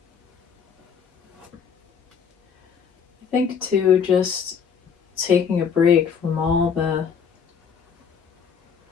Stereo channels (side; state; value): right; quieter; 6.8 dB